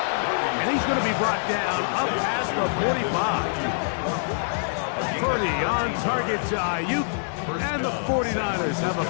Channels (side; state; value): right; silent; 62 dB below the other